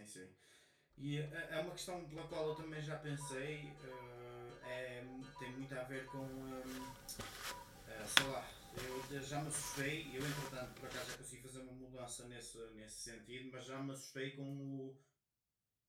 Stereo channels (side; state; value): both; identical; correlation 1.00